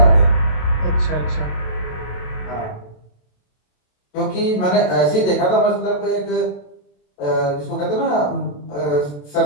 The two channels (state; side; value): late; right; 27 ms